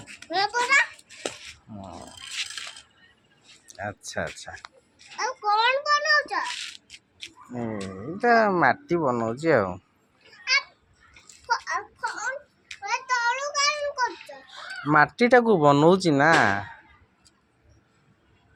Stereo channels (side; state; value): both; identical; correlation 1.00